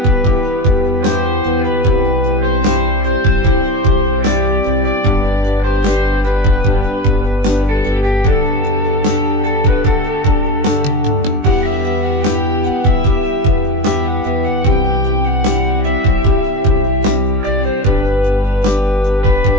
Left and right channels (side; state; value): left; late; 20 ms